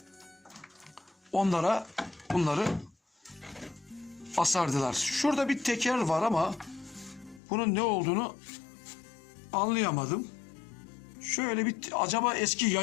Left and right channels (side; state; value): right; drops out; at 7.4 s